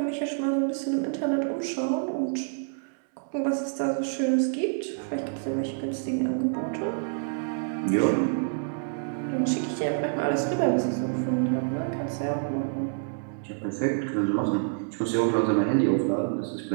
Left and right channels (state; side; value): silent; left; digital silence